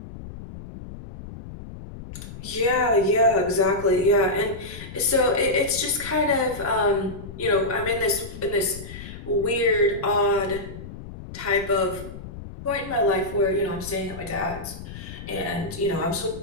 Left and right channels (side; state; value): left; noise; rumble, 13 dB below the sound